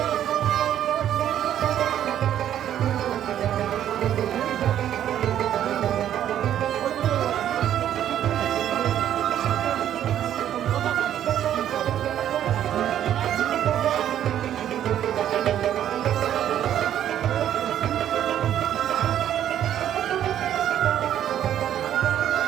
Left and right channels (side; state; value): left; quieter; 10.8 dB